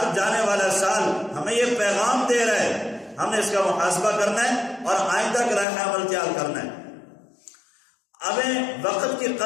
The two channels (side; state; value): right; drops out; at 5.7 s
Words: جانے والا سال ہمیں یہ پیغام دے رہا ہے، ہم نے اس کا محاسبہ کرنا ہے اور آئندہ کا لائحہ عمل تیار کرنا ہے۔ ہمیں وقت کی